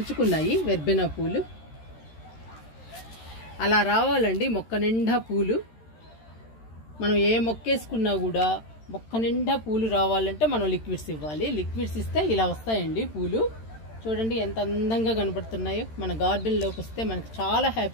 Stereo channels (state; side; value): late; right; 13 ms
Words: వెర్బెనా పూలు. అలా రావాలండి మొక్క నిండా పూలు. మనం ఏ మొక్క వేసుకున్నా కూడా మొక్క నిండా పూలు రావాలంటే మనం లిక్విడ్స్ ఇవ్వాలి. లిక్విడ్స్ ఇస్తే ఇలా వస్తాయండి పూలు. చూడండి ఎంత అందంగా కనపడుతున్నాయో. మన గార్డెన్లోకి వస్తే మనకు చాలా